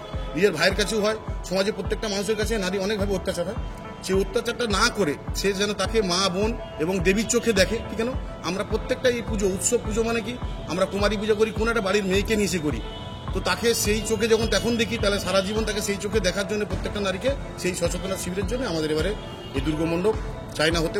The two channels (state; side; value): identical; both; correlation 1.00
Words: নিজের ভাইয়ের কাছেও হয়, সমাজের প্রত্যেকটা মানুষের কাছে নারী অনেকভাবে অত্যাচার হয়। সেই অত্যাচারটা না করে সে যেন তাকে মা বোন এবং দেবীর চোখে দেখে। ঠিক কেন আমরা প্রত্যেকটা এই পুজো উৎসব, পুজো মানে কি আমরা কুমারী পুজো করি, কোন একটা বাড়ির মেয়েকে নিয়ে এসে করি, তো তাকে সেই চোখে যখন তখন দেখি, তাহলে সারা জীবন তাকে সেই চোখে দেখার জন্য প্রত্যেকটা নারীকে সেই সচেতনতা শিবিরের জন্য আমাদের এবারে এই দুর্গা মণ্ডপ চায়না হতে